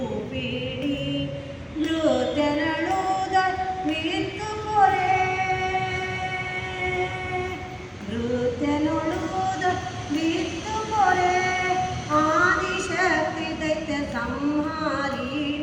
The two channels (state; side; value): identical; both; correlation 1.00